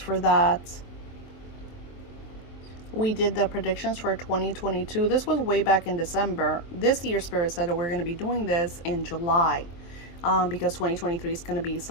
for that. We did the predictions for 2022. This was way back in December. This year, Spirit said that we're going to be doing this in July, because 2023 is going to be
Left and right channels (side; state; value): right; late; 23 ms